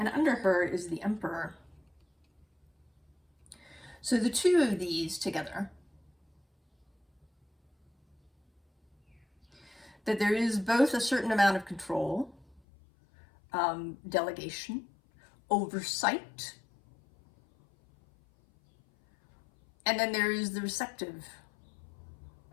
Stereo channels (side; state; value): right; drops out; at 12.6 s